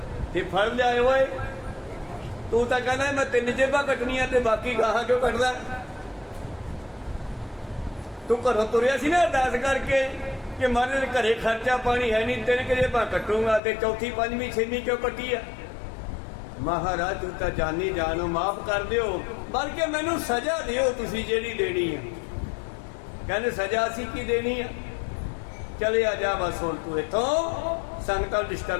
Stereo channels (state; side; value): drops out; right; at 13.6 s